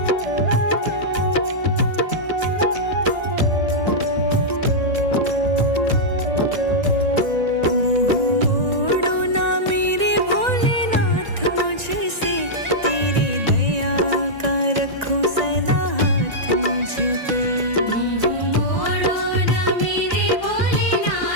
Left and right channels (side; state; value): left; late; 1.9 ms